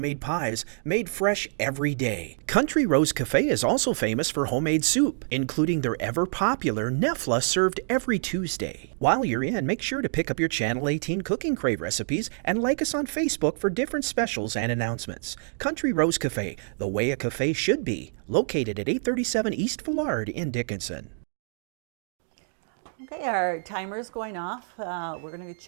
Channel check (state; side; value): silent; left; digital silence